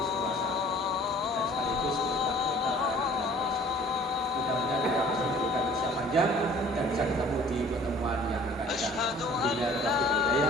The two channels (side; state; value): both; normal; correlation 0.51